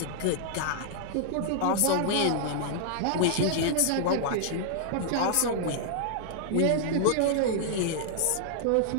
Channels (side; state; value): both; different; correlation -0.01